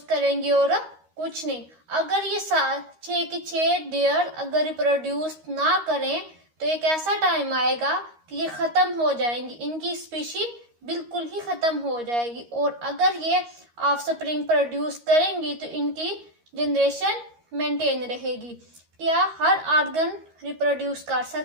करेंगी और कुछ नहीं। अगर ये 6 डेयर अगर रिप्रोड्यूस ना करें तो एक ऐसा टाइम आएगा कि ये ख़त्म हो जाएंगी, इनकी स्पीशी बिल्कुल ही ख़त्म हो जाएगी। और अगर ये ऑफस्प्रिंग प्रोड्यूस करेंगी तो इनकी जनरेशन मेंटेन रहेगी। क्या हर ऑर्गन रिप्रोड्यूस कर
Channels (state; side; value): late; left; 13 ms